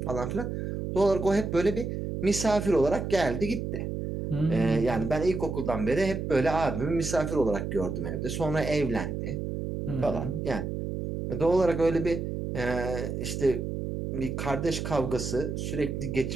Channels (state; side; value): noise; right; hum, 4 dB below the sound